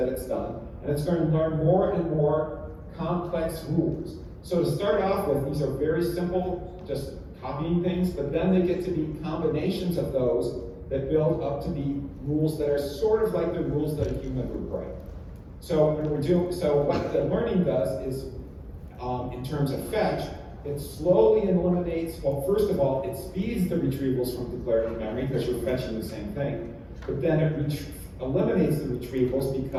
it's done, and it's going to learn more and more complex rules. So to start off with, these are very simple, just copying things, but then they get to be combinations of those that build up to be rules that are sort of like the rules that a human would write. So what the learning does is, in terms of fetch, it slowly eliminates, well, first of all, it speeds the retrievals from declarative memory because you're fetching the same thing, but then it eliminates the retrievals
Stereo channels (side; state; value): both; identical; correlation 1.00